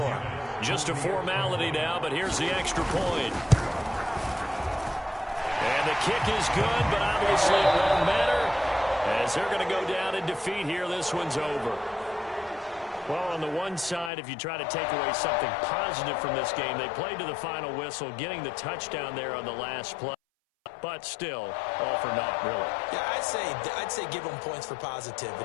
Just a formality now, but here's the extra point. And the kick is good, but obviously it won't matter as they're going to go down in defeat here. This one's over. Well, on the one side, if you try to take away something positive from this game, they played to the final whistle, getting the touchdown there on the last play. But still, all for naught, really. Yeah, I'd say give them points for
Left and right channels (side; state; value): right; drops out; at 14.1 s